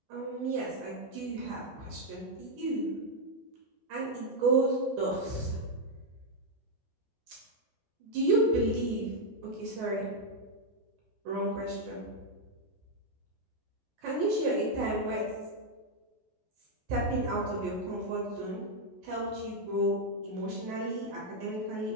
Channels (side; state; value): both; normal; correlation -0.01